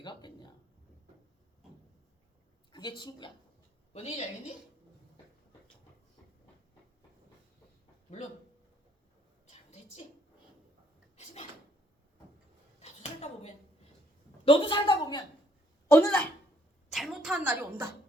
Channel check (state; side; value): normal; both; correlation 0.68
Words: 갔겠냐? 그게 친구야. 뭔 얘기인지 알겠니? 물론 잘못했지. 하지만 너도 살다 보면 어느 날 잘못한 날이 온다.